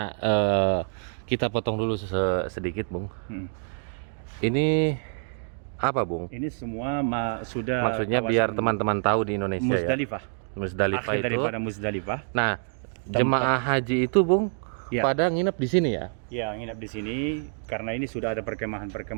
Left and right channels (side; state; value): left; silent; digital silence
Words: kita potong dulu sedikit, Bung. Hmm. Ini apa, Bung? Ini semua sudah Maksudnya kawasan biar teman-teman tahu di Indonesia Muzdalifah. ya. Muzdalifah Akhir itu. daripada Muzdalifah. Nah, jemaah haji itu, Bung, Ya. pada nginep di sini ya. Ya, nginap di sini karena ini sudah ada